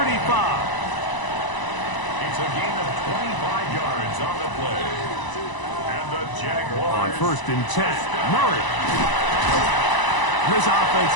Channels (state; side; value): late; right; 1.0 ms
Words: It's a gain of 25 yards on the play. And the Jaguars. On 1st and 10, Murray. This